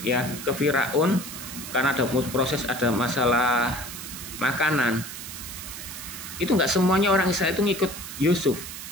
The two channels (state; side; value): noise; right; hiss, 10 dB below the sound